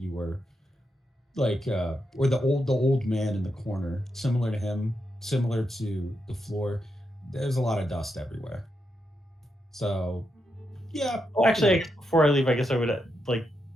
were like, or the old man in the corner, similar to him, similar to the floor. There's a lot of dust everywhere. So, yeah. Oh, actually, I guess before I leave, I guess I would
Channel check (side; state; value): both; normal; correlation 0.84